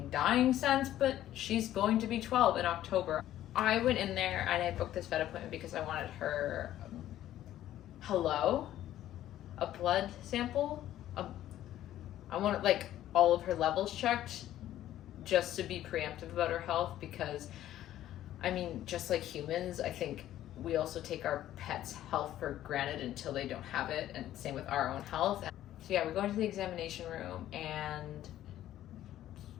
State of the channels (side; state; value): right; quieter; 12.9 dB